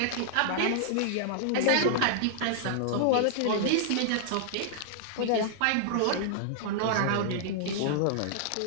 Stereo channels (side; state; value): both; different; correlation -0.01